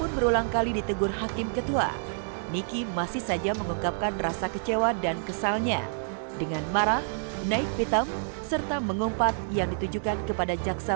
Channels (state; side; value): silent; left; digital silence